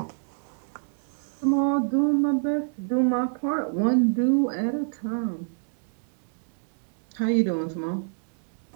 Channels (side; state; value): left; silent; digital silence